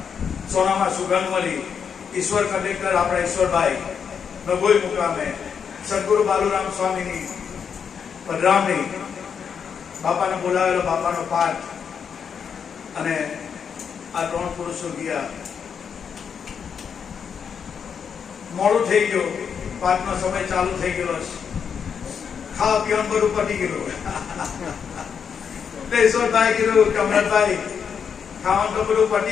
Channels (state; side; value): quieter; right; 7.0 dB